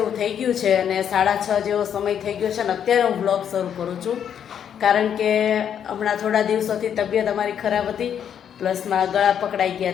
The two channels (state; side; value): quieter; right; 8.7 dB